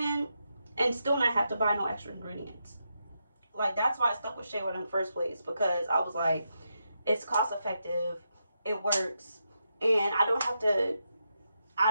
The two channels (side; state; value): both; inverted; correlation -0.84